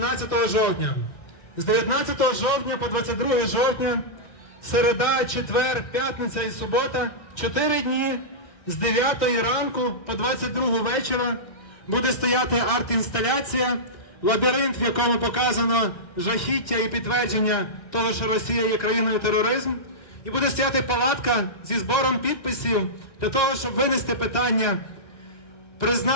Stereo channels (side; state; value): right; late; 1.6 ms